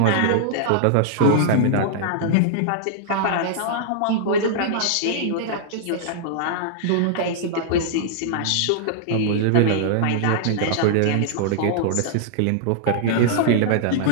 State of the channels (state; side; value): different; both; correlation -0.01